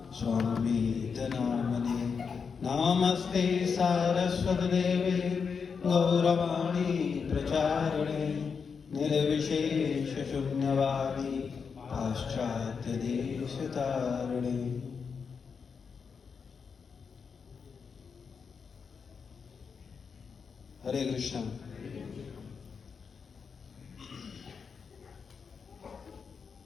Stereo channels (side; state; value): right; quieter; 5.8 dB